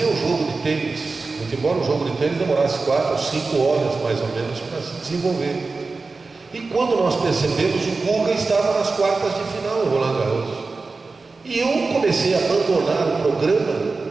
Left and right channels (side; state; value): left; quieter; 3.9 dB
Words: o jogo de tênis, muito embora o jogo de tênis demorasse 4 ou 5 horas mais ou menos para se desenvolver. E quando nós percebemos, o Guga estava nas quartas de final em Roland Garros. E eu comecei a abandonar o programa,